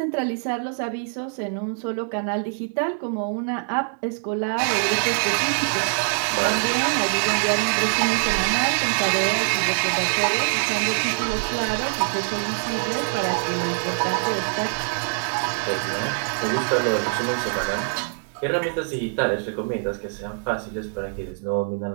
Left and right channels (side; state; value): left; silent; digital silence